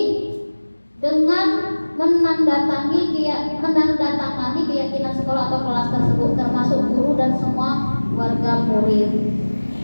dengan menandatangani keyakinan sekolah atau kelas tersebut, termasuk guru dan semua warga murid.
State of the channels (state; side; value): inverted; both; correlation -1.00